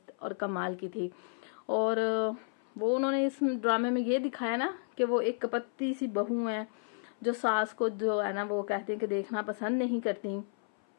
और कमाल की थी। और वो उन्होंने इस ड्रामे में ये दिखाया ना कि वो एक कपत्ती सी बहू है जो सास को जो है ना वो कहते हैं कि देखना पसंद नहीं करती।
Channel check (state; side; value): silent; right; 56 dB below the other